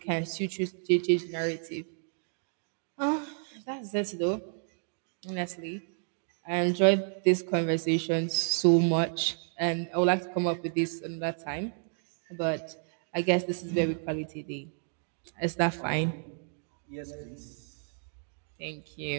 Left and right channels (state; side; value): silent; left; 57 dB below the other